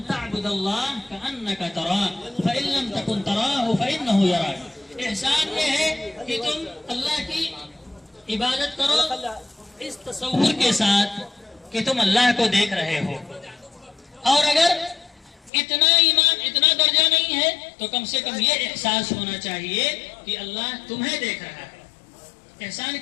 تعبد اللہ کأنک تراہ فإن لم تکن تراہ فإنہ یراک. احسان یہ ہے کہ تم اللہ کی عبادت کرو اس تصور کے ساتھ کہ تم اللہ کو دیکھ رہے ہو. اور اگر اتنا ایمان اتنا درجہ نہیں ہے تو کم سے کم یہ احساس ہونا چاہیے کہ اللہ تمہیں دیکھ رہا ہے. احسان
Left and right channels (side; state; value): right; drops out; at 15.5 s